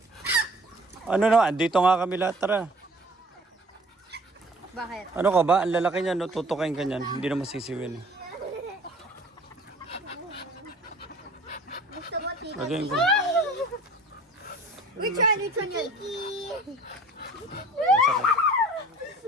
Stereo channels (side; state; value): both; normal; correlation 0.48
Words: Ano naman? Dito nga kami lahat. Tara. Bakit? Ano ka ba? Ang lalaki niya, no? Tutukain ka niyan. Hindi na masisiwin. Gusto mo tito? Lagyan ko. Which one? Which one yun?